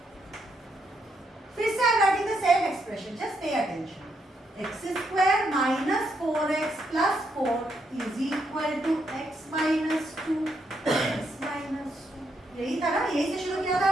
फिर से I am writing the same expression, just pay attention. x square minus 4x plus 4 is equal to x minus 2 x minus 2. यही था ना, यही से शुरू किया था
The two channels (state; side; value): normal; both; correlation 0.78